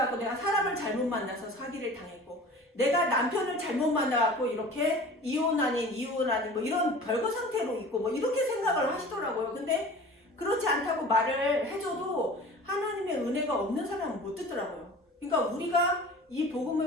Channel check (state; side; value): normal; both; correlation 0.41